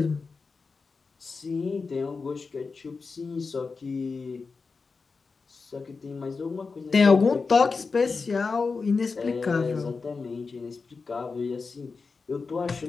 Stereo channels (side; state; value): right; quieter; 4.5 dB